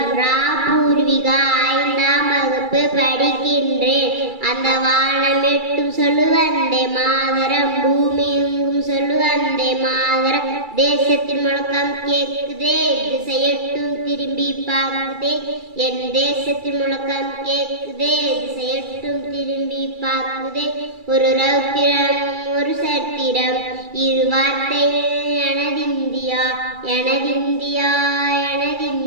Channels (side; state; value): left; late; 2.3 ms